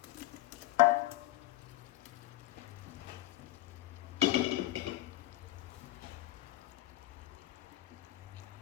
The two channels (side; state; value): right; quieter; 16.5 dB